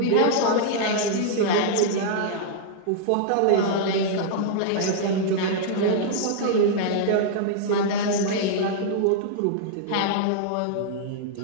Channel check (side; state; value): both; different; correlation -0.01